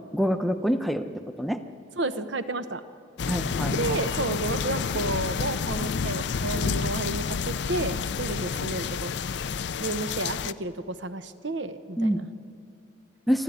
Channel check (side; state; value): both; normal; correlation 0.39